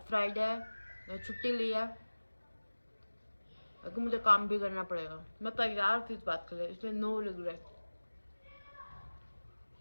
फ्राइडे है, मैं छुट्टी ली है, लेकिन मुझे काम भी करना पड़ेगा। मैं तैयार थी इस बात के लिए, इसलिए no regret.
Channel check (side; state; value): both; inverted; correlation -1.00